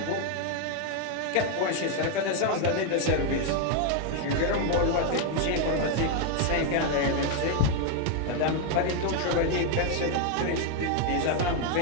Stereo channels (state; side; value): different; both; correlation 0.01